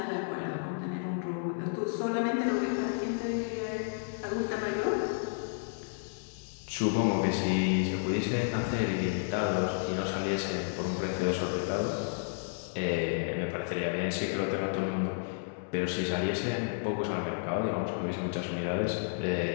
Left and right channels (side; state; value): right; silent; digital silence